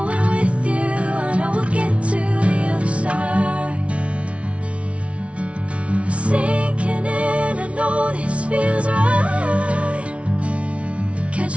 with you, I know we'll get to the other side. Sinking in, I know this feels right.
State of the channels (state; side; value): late; left; 0.062 ms